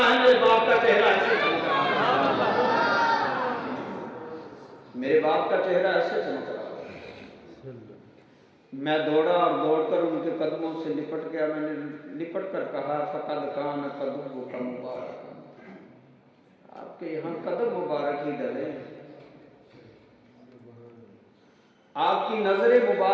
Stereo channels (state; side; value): identical; both; correlation 1.00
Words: मेरे बाप का चेहरा ऐसे चमक रहा था। मेरे बाप का चेहरा ऐसे चमक रहा। मैं दौड़ा और दौड़कर उनके कदमों से लिपट गया। मैंने लिपट कर कहा फकद खान कदम का मुबारक, आपके यहाँ कदम मुबारक ही डले, आपकी नजरें